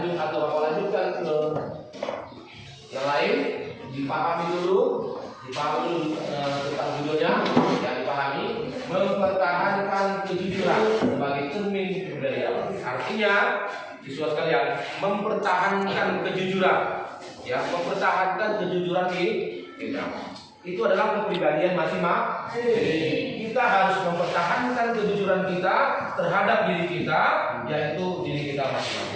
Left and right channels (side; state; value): both; identical; correlation 1.00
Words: atau lanjutkan ke yang lain, dipahami dulu tentang judulnya yang dipahami, mempertahankan kejujuran sebagai cermin kepribadian. Artinya, siswa sekalian, mempertahankan kejujuran, ya, mempertahankan kejujuran di kita. Itu adalah kepribadian masing-masing. Kita harus mempertahankan kejujuran kita terhadap diri kita, yaitu diri kita